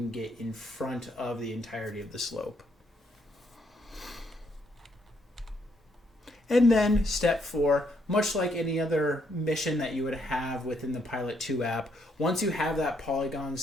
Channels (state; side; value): normal; both; correlation 0.73